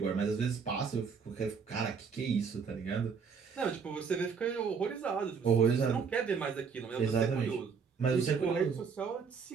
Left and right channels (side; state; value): left; quieter; 5.9 dB